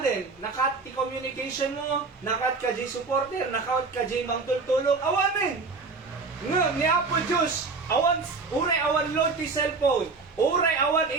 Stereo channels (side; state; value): left; quieter; 4.2 dB